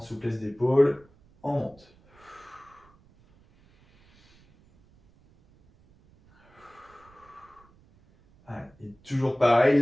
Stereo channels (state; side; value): noise; right; rumble, 30 dB below the sound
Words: souplesse d'épaule, on monte. Allez, et toujours pareil,